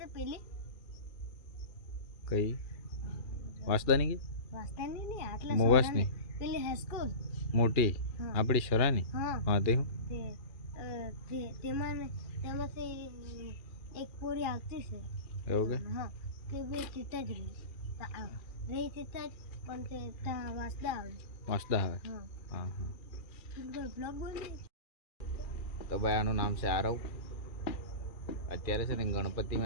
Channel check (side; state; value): right; late; 2.4 ms